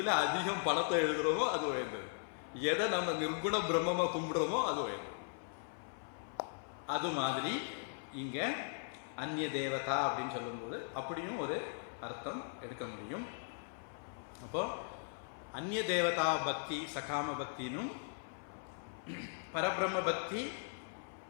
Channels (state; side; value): silent; right; 52 dB below the other